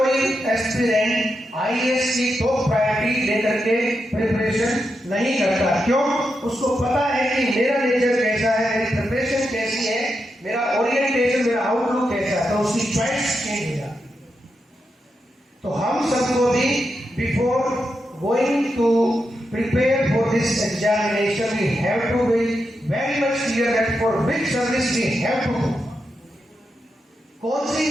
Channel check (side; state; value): both; normal; correlation 0.86